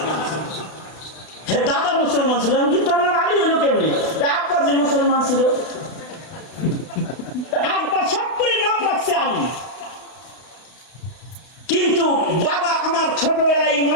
হ্যাঁ, দাদা মুসলমান ছিল, কিন্তু আমার আলী হইল কেমনি? আব্বা যে মুসলমান ছিল, আব্বা সব করে নাম রাখছে আলী, কিন্তু বাবা আমার ছোটবেলায়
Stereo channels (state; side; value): late; right; 32 ms